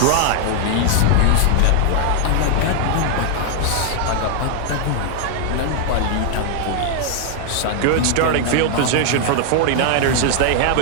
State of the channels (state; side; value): different; both; correlation 0.00